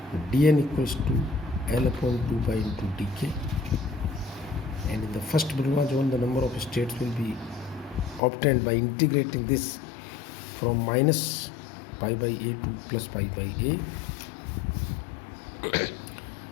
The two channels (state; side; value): drops out; right; at 8.2 s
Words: dn equals to L upon 2 pi into dk. And in the first Brillouin zone, the number of states will be obtained by integrating this from minus pi by a to plus pi by a,